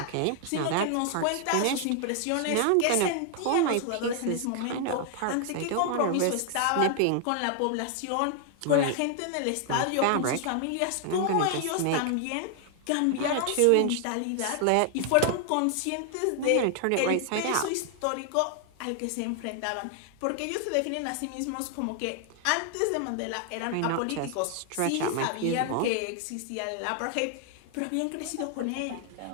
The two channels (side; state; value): both; different; correlation 0.00